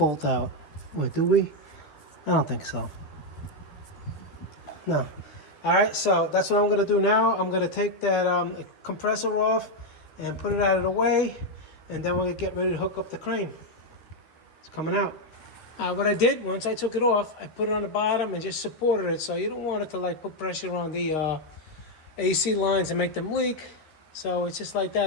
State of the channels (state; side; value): late; right; 13 ms